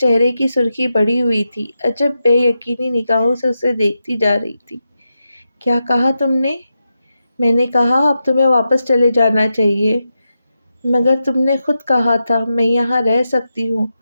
کی سرخی بڑھی ہوئی تھی، عجب بے یقینی نگاہوں سے اسے دیکھتی جا رہی تھی۔ کیا کہا تم نے؟ میں نے کہا اب تمہیں واپس چلے جانا چاہیے۔ مگر تم نے خود کہا تھا میں یہاں رہ سکتی ہوں۔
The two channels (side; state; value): both; inverted; correlation -0.88